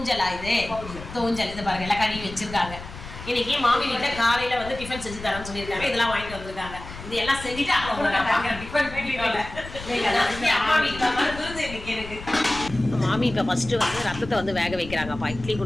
இது தோஞ்சல். இது பாருங்க எல்லாம் கழுவி வச்சிருக்காங்க. இன்னைக்கு மாமி வீட்டில் காலையில் வந்து டிஃபன் செஞ்சு தரேன்னு சொல்லியிருக்காங்க. இதெல்லாம் வாங்கிட்டு வந்திருக்காங்க. இது எல்லாம் செஞ்சுட்டு அம்மா வீட்டில் இன்னைக்கு எனக்கு மாமி இப்போ ஃபஸ்ட்டு வந்து ரத்தத்தை வந்து வேக வைக்கிறாங்கப்பா. இட்லி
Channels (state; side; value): noise; left; rumble, 13 dB below the sound